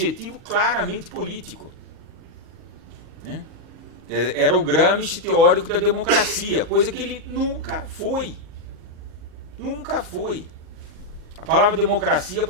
claramente político, né? Era o Gramsci teórico da democracia, coisa que ele nunca foi. Nunca foi. A palavra democracia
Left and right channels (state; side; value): late; left; 38 ms